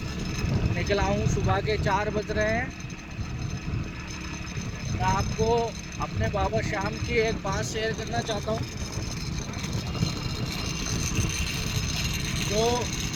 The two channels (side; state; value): both; identical; correlation 1.00